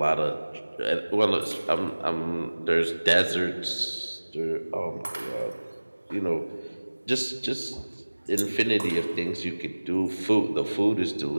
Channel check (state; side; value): inverted; both; correlation -1.00